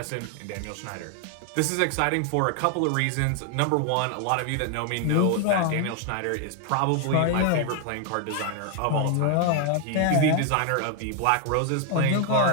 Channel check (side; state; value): both; different; correlation 0.00